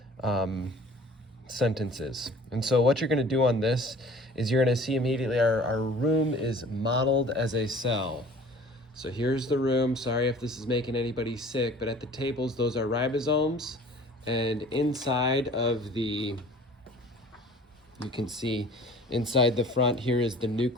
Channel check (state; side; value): normal; both; correlation 0.48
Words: sentences. And so what you're going to do on this is you're going to see immediately our room is modeled as a cell. So here's the room. Sorry if this is making anybody sick, but at the tables, those are ribosomes, and inside of the you can see inside the front here is the